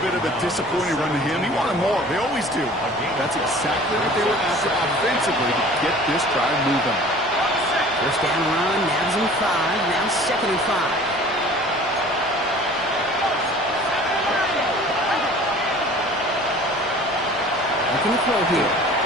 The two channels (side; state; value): left; noise; rumble, 28 dB below the sound